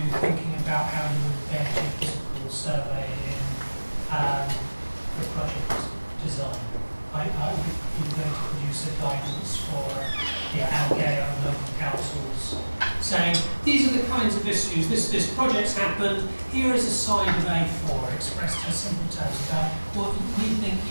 thinking about how you embed your physical survey in the project design? Are you going to produce a guidance for our GAO and local councils saying, these are the kinds of issues, this project's happened, here is a side of A4 expressed in simple terms about what we think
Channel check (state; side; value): inverted; both; correlation -1.00